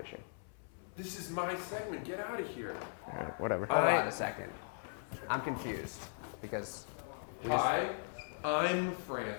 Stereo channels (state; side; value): silent; right; 52 dB below the other